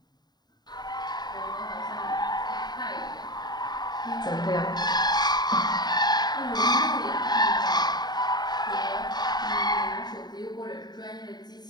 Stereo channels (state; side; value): late; right; 0.20 ms